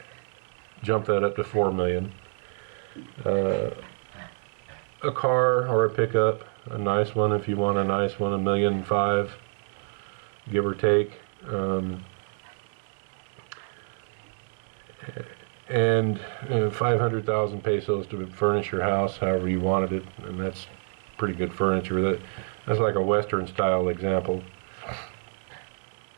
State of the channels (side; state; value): left; silent; 60 dB below the other